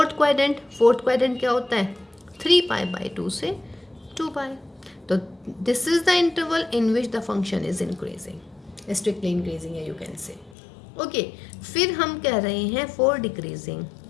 quadrant. Fourth quadrant क्या होता है, 3π/2 से 2π। तो this is the interval in which the function is increasing, strictly increasing है यू कैन से। ओके, फिर हम कह रहे हैं फॉर डिक्रीजिंग।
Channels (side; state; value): right; drops out; at 10.6 s